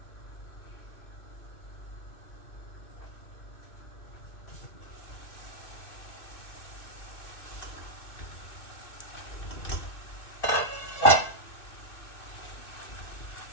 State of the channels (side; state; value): right; late; 2.6 ms